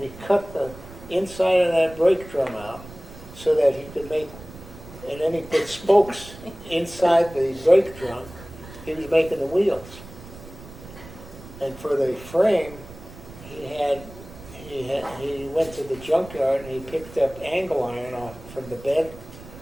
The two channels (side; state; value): right; noise; rumble, 16 dB below the sound